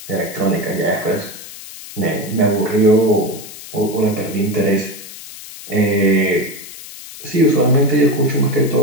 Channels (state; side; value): noise; left; hiss, 14 dB below the sound